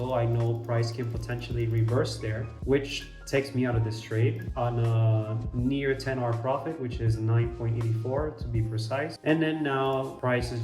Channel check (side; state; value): both; identical; correlation 1.00